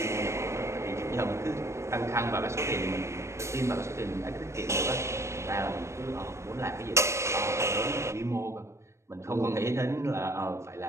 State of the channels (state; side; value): late; left; 0.13 ms